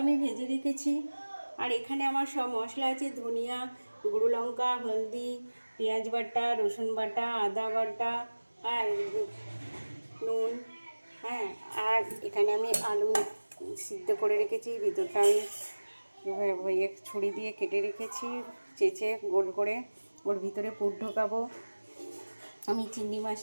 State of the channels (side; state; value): both; inverted; correlation -1.00